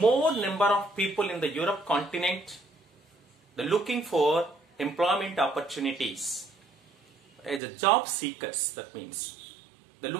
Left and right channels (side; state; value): left; drops out; at 7.6 s